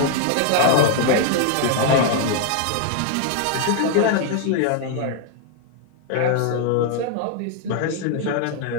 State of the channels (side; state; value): both; different; correlation 0.00